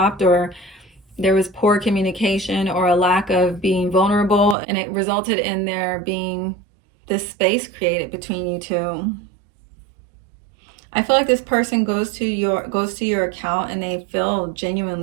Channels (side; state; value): left; drops out; at 4.5 s